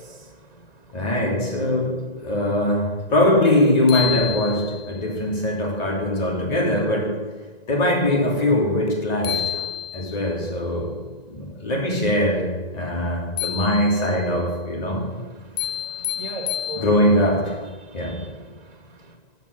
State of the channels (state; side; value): late; right; 1.9 ms